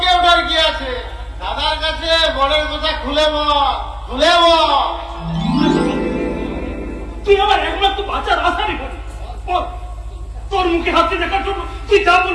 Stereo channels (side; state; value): both; identical; correlation 1.00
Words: ওঠার কি আছে, দাদার কাছে বনের কথা খুলে বল, খুলে বল। তুই আমার একমাত্র বাচ্চার আশারই করি, তোর মুখে হাসি দেখার জন্য তুই যা